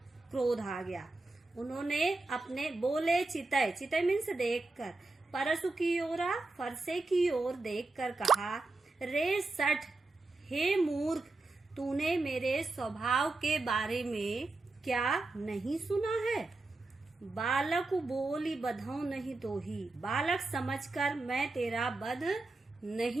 क्रोध आ गया। उन्होंने अपने बोले चितय, चितय मीन्स देखकर, परसु की ओरा, फरसे की ओर देखकर कहा, रे सठ, हे मूर्ख, तूने मेरे स्वभाव के बारे में क्या नहीं सुना है? बालक बोली बधौ नहीं तो ही, बालक समझकर मैं तेरा वध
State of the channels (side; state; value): left; quieter; 3.3 dB